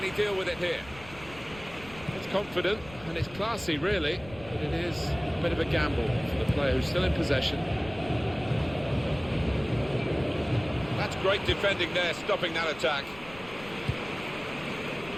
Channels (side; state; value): left; noise; rumble, 18 dB below the sound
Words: he deal with it here? It's confident and it's classy, really, but it is a bit of a gamble for the player who's still in possession. That's great defending there, stopping that attack.